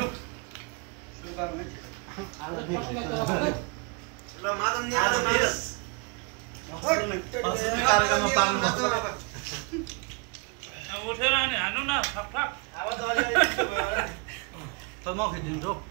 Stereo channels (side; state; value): left; quieter; 31.0 dB